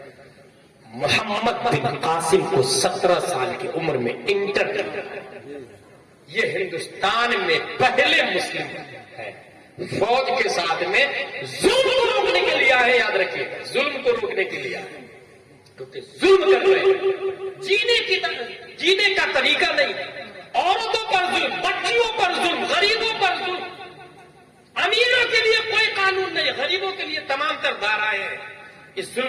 محمد بن قاسم کو 17 سال کی عمر میں انٹر کیا۔ یہ ہندوستان میں پہلے مسلم ہے فوج کے ساتھ میں ظلم کو روکنے کے لیے آئے، یاد رکھیے، ظلم کو روکنے کے لیے آئے، کیونکہ ظلم کر رہے ہیں، جینے کا طریقہ نہیں، عورتوں پر ظلم، بچیوں پر ظلم، غریبوں پر ظلم۔ امیروں کے لیے کوئی قانون نہیں، غریبوں کے لیے تمام تر دھارائیں ہیں۔ اس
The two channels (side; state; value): both; identical; correlation 1.00